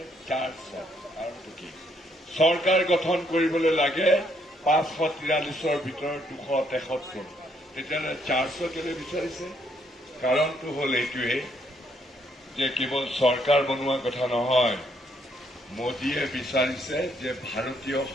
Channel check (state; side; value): normal; both; correlation 0.71